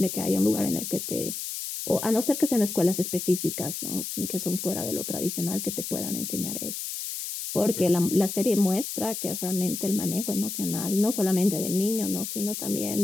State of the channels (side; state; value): left; noise; hiss, 5 dB below the sound